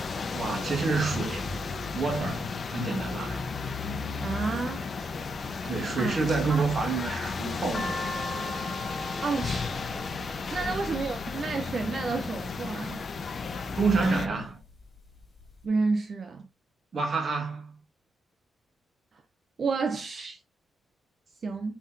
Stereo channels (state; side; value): normal; both; correlation 0.82